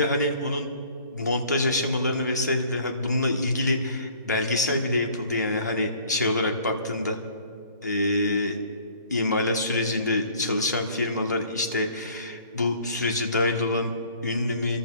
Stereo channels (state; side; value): inverted; both; correlation -0.54